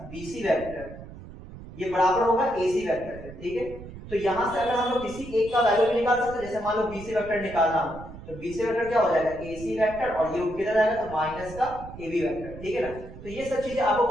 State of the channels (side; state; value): right; noise; rumble, 14 dB below the sound